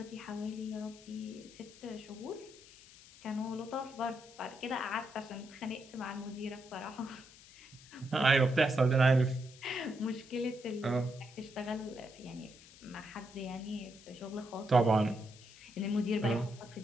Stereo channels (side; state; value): left; noise; hiss, 21 dB below the sound